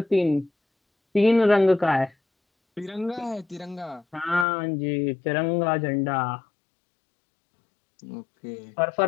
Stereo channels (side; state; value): right; drops out; at 4.5 s